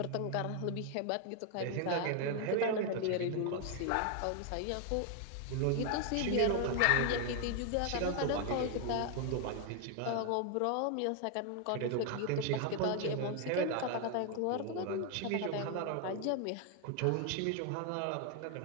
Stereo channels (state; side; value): different; both; correlation 0.00